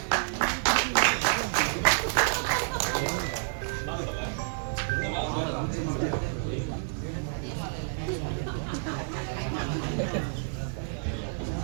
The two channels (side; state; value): left; silent; digital silence